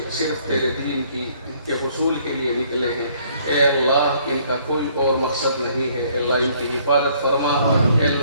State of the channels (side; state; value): both; inverted; correlation -0.63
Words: صرف تیرے دین کے حصول کے لیے نکلے ہیں. اے اللہ ان کا کوئی اور مقصد نہیں ہے. اے اللہ ان کی حفاظت فرما. اے